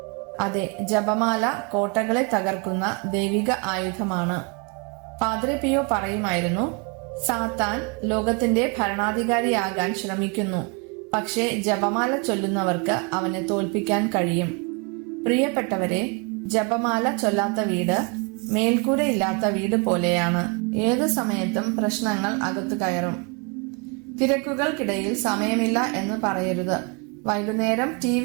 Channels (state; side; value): quieter; left; 33.3 dB